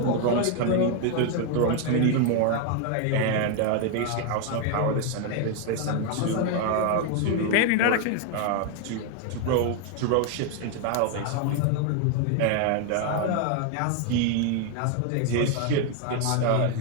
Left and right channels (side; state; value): both; different; correlation 0.01